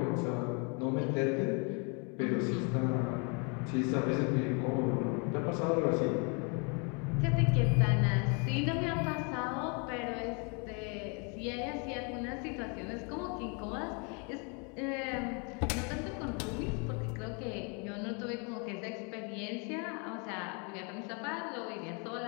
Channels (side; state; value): right; quieter; 34.9 dB